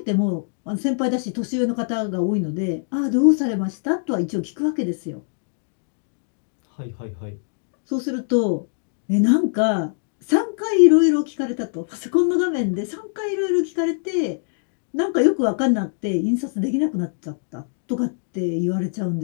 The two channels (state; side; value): silent; right; digital silence